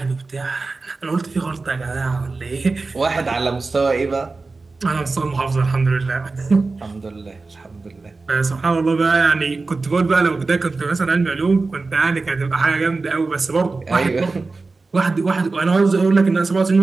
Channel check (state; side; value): quieter; left; 3.8 dB